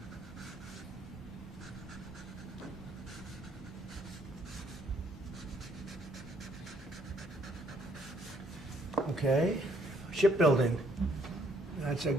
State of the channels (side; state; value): both; normal; correlation 0.67